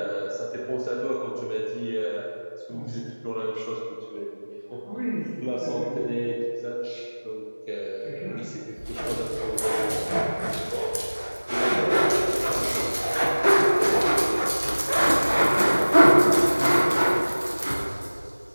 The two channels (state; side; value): inverted; both; correlation -1.00